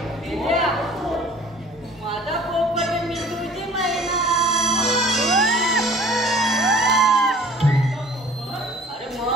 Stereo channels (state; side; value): normal; both; correlation 0.51